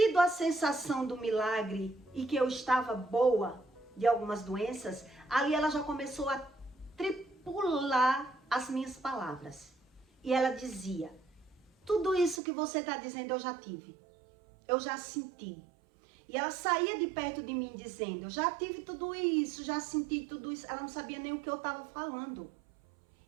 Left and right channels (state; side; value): drops out; left; at 12.4 s